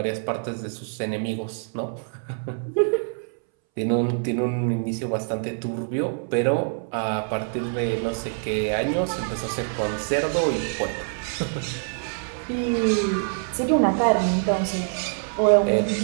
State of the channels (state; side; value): silent; left; 62 dB below the other